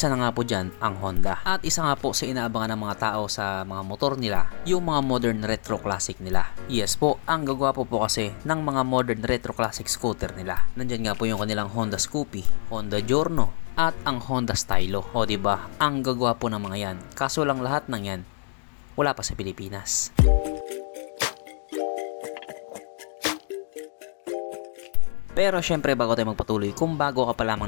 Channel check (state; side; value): silent; right; digital silence